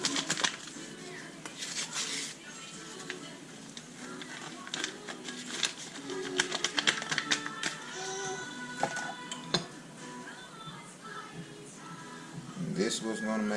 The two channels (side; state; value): both; identical; correlation 1.00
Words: And this was going to